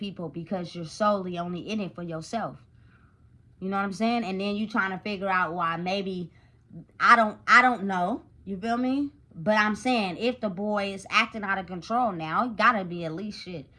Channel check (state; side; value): identical; both; correlation 1.00